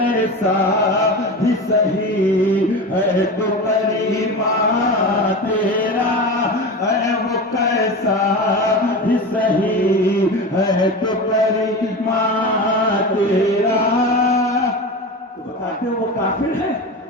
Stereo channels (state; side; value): normal; both; correlation 0.27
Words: بھی سہی ہے تو کریمہ تیرا، اے وہ کیسا بھی سہی ہے تو کریمہ تیرا۔ تو بتاتے ہو وہ کافر ہے؟